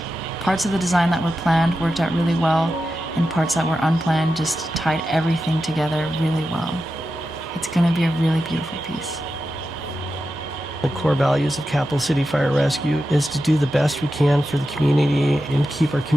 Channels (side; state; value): both; normal; correlation 0.90